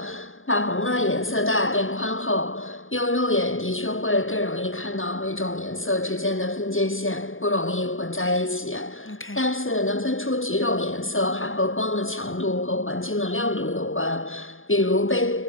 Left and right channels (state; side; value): late; right; 0.59 ms